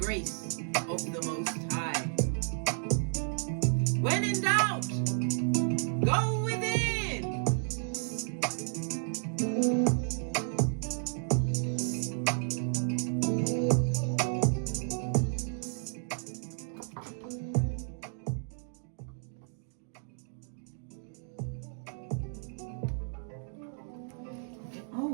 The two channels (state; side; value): silent; left; 56 dB below the other